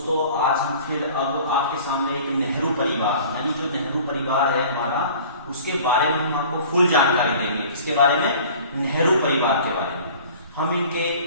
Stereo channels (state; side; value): inverted; both; correlation -0.46